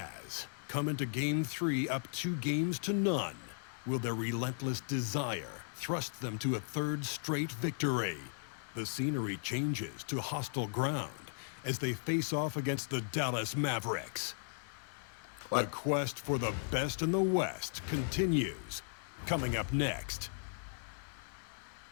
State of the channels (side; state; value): right; silent; digital silence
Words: come into Game 3 up 2-0. Will their relentless desire thrust them to a third straight victory? The scenery changes to hostile ground as they face off against the Dallas Mavericks. What? The quest for the best in the West continues. Coming up next.